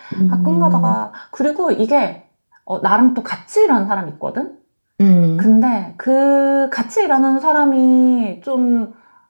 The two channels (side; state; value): both; inverted; correlation -1.00